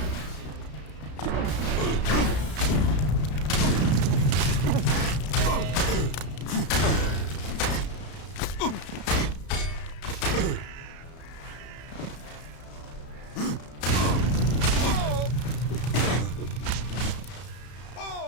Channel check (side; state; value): right; late; 33 ms